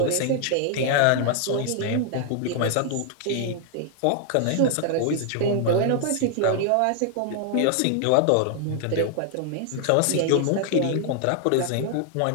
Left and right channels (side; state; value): both; different; correlation 0.00